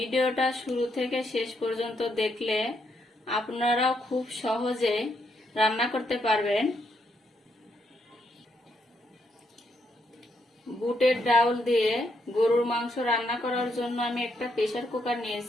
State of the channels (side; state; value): both; normal; correlation 0.77